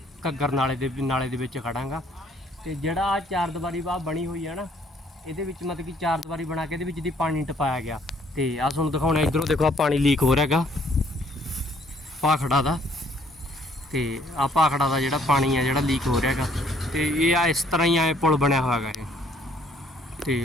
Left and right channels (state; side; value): normal; both; correlation 0.63